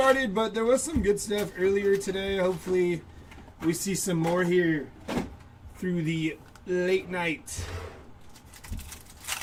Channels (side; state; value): both; identical; correlation 1.00